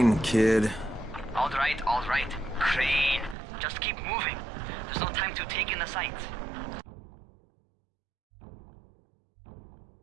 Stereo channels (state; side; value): drops out; left; at 3.4 s